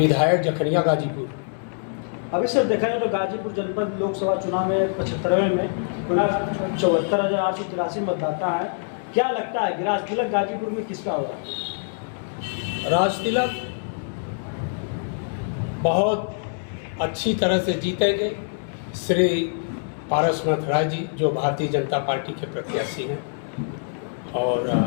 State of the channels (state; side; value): silent; right; digital silence